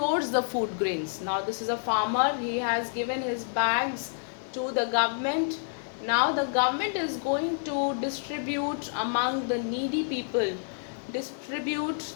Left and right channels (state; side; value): silent; right; digital silence